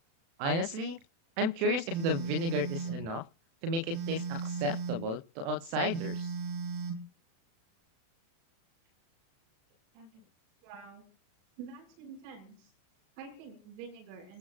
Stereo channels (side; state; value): left; late; 36 ms